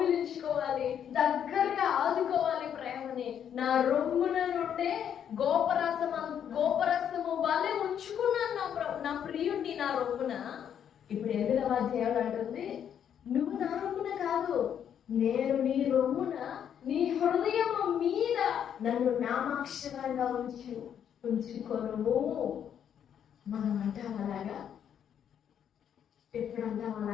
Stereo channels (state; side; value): quieter; right; 8.9 dB